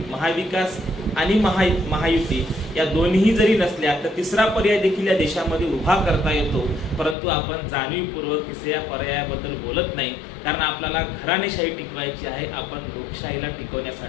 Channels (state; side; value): drops out; right; at 7.2 s